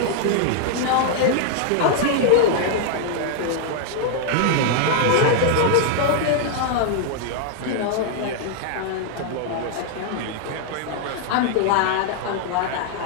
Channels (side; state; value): both; different; correlation 0.00